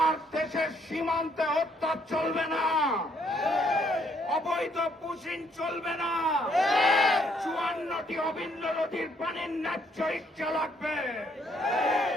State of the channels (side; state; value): both; normal; correlation 0.68